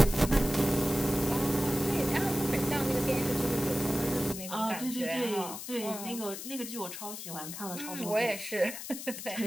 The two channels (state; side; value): noise; left; hiss, 9 dB below the sound